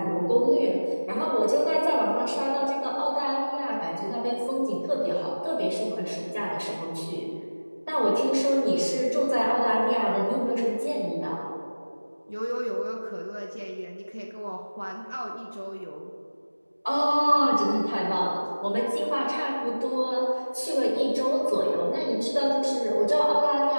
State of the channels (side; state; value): both; inverted; correlation -1.00